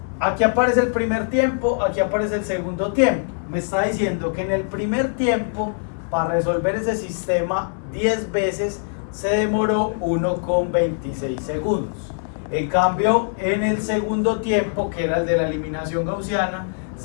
aquí aparece el primer tiempo, aquí aparece el segundo tiempo. Me está diciendo que en el primer tiempo, para resolver ese sistema 10 veces, se demoró 1,26 segundos. En cambio, en el segundo tiempo, que era el de la eliminación gaussiana,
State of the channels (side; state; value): right; silent; 64 dB below the other